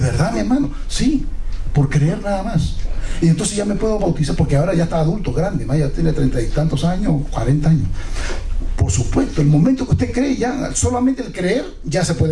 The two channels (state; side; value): identical; both; correlation 1.00